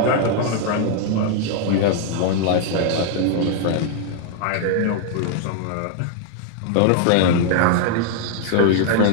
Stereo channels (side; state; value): both; different; correlation 0.00